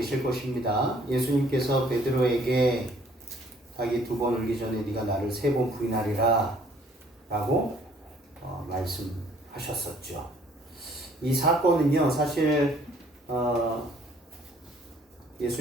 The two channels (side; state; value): both; normal; correlation 0.59